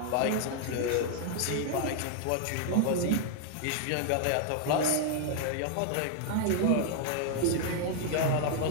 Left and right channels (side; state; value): both; different; correlation 0.00